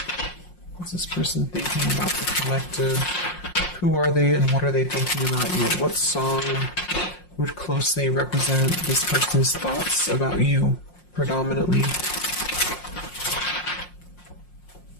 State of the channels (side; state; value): right; late; 5.6 ms